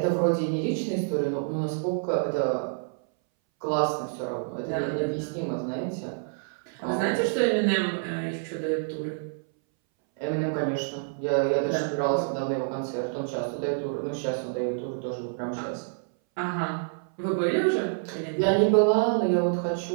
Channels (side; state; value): left; silent; 60 dB below the other